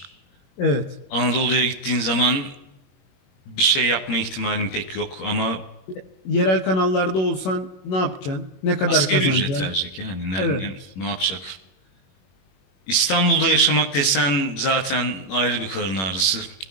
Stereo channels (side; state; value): right; late; 22 ms